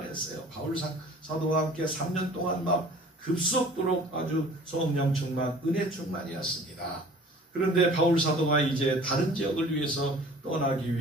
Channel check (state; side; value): normal; both; correlation 0.48